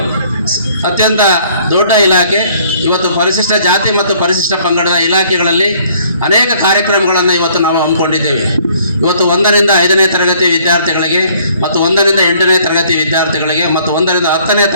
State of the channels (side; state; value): both; inverted; correlation -0.60